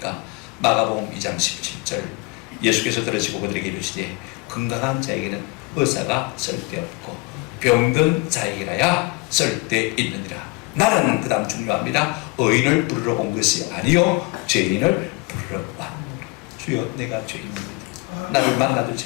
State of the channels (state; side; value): quieter; right; 25.1 dB